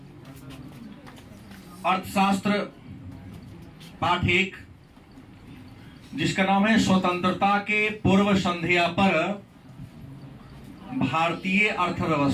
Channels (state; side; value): identical; both; correlation 1.00